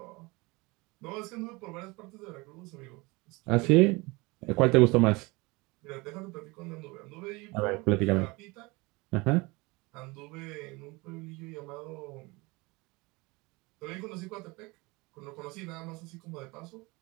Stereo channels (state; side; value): quieter; left; 24.8 dB